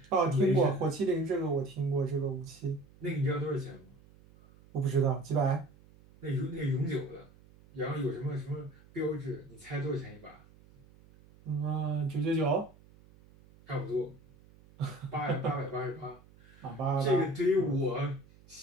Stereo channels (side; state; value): right; noise; hum, 25 dB below the sound